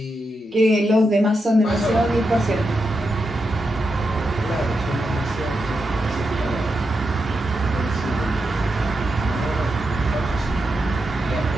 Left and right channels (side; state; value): both; normal; correlation 0.86